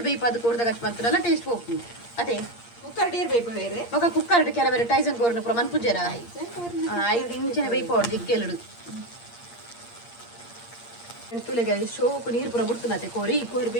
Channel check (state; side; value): late; right; 8.6 ms